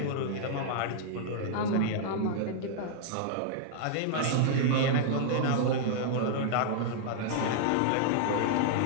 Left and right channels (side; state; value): both; different; correlation -0.01